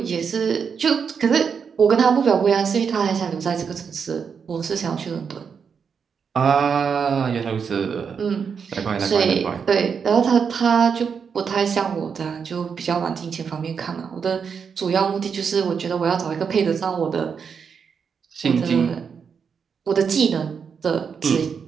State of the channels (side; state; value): left; quieter; 6.4 dB